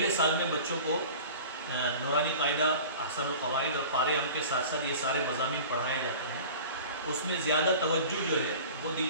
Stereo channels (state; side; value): inverted; both; correlation -0.40